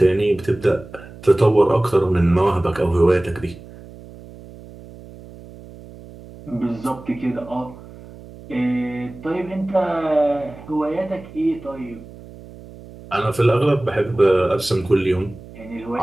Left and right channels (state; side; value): noise; right; hum, 18 dB below the sound